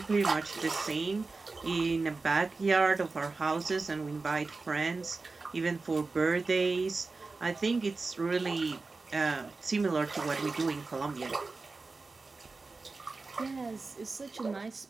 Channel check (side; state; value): left; quieter; 3.8 dB